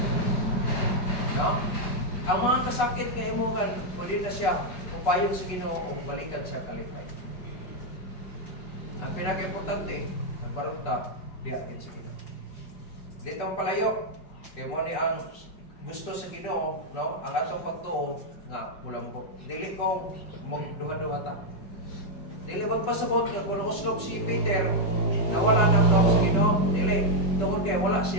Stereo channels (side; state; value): right; late; 5.2 ms